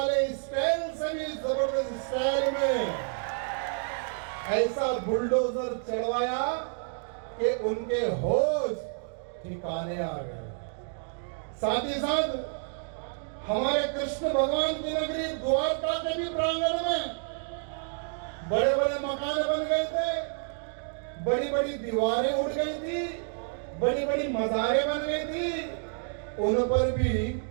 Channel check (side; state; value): left; silent; 58 dB below the other